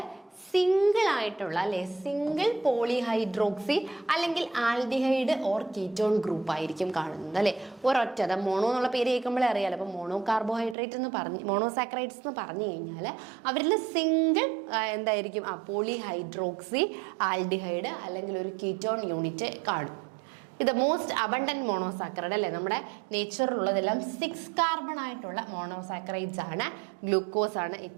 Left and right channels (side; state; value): left; drops out; at 10.8 s